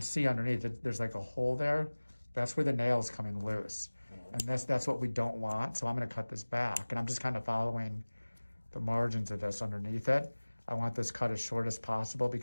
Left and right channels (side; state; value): both; inverted; correlation -1.00